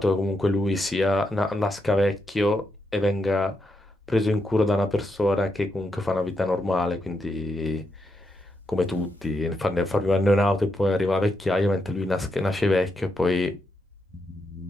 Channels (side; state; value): both; normal; correlation 0.82